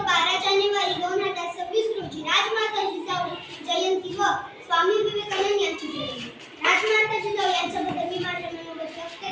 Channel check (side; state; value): both; identical; correlation 1.00